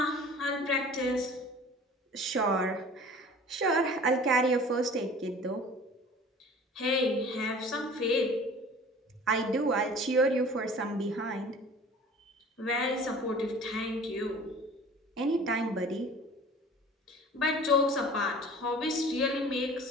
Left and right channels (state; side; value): normal; both; correlation 0.44